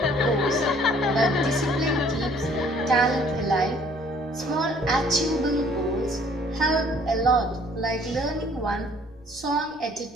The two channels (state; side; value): noise; left; hum, 28 dB below the sound